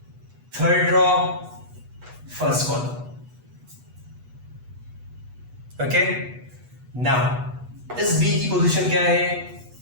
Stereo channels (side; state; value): left; late; 8.2 ms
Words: third row first column. Okay, now इस बी की पोजीशन क्या है?